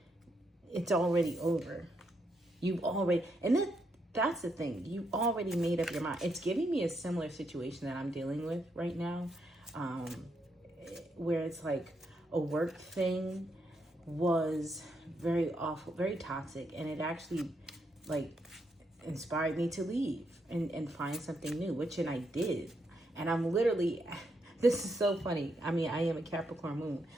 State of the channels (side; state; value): both; normal; correlation 0.79